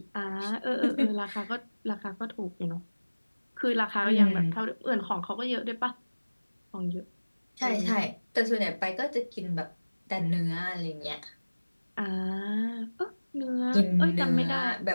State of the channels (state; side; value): inverted; both; correlation -1.00